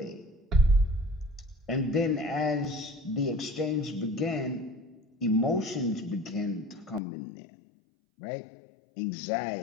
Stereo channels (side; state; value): right; drops out; at 7.0 s